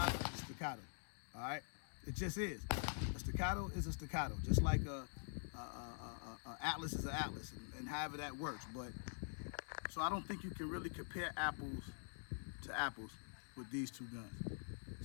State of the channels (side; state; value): right; silent; digital silence